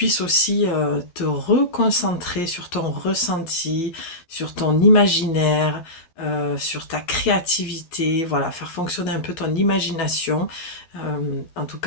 aussi te reconcentrer sur ton ressenti, sur ton imaginaire, sur ta créativité, voilà, faire fonctionner un peu ton imagination. En tout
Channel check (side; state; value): right; late; 12 ms